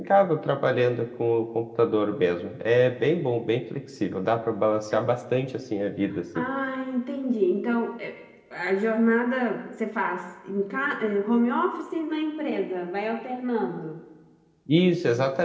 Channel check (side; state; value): both; identical; correlation 1.00